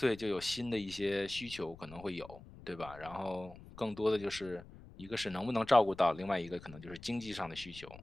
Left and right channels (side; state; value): left; noise; rumble, 18 dB below the sound